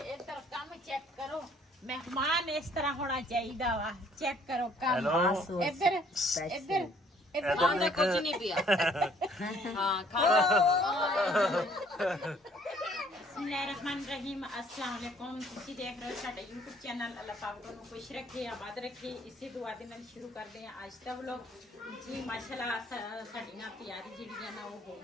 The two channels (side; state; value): both; normal; correlation 0.61